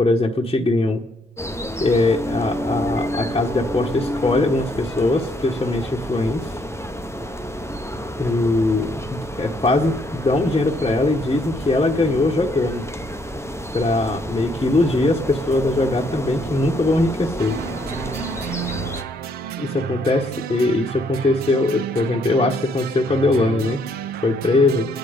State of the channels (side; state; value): both; normal; correlation 0.69